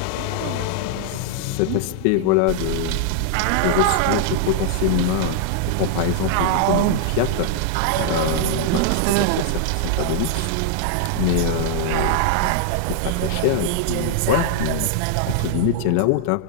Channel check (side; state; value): both; different; correlation -0.01